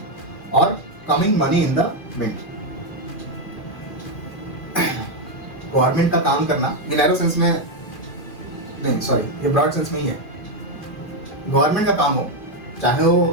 or coming money in the mint। Government का काम करना, ये नैरो सेंस में नहीं, सॉरी, ये ब्रॉड सेंस में ही है। Government का काम हो, चाहे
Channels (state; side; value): late; right; 2.4 ms